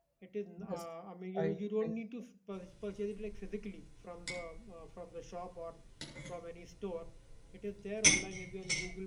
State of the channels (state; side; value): identical; both; correlation 1.00